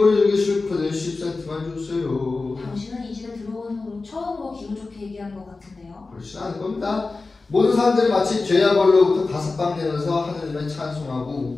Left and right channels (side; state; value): right; quieter; 3.7 dB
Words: 주기 싫거든 10cm만 주세요. 당신은 이 집에 들어온 후로 처음으로 기분 좋게 얘기한 것 같은데요. 그렇지 않을 겁니다. 모든 사람들이 마치 죄와 벌로부터 다섯방 되면서 하느님을 찬송하고